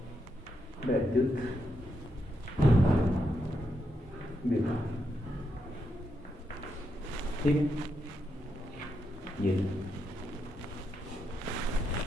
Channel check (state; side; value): normal; both; correlation 0.82